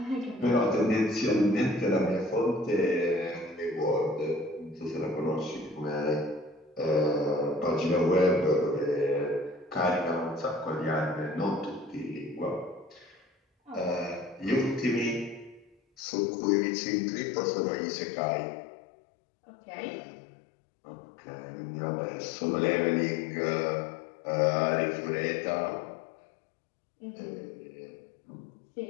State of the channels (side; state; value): right; drops out; at 16.0 s